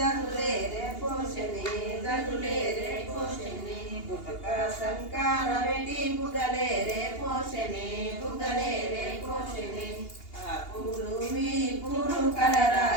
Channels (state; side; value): late; right; 2.8 ms